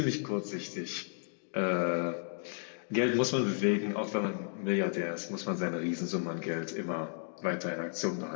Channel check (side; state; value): right; silent; digital silence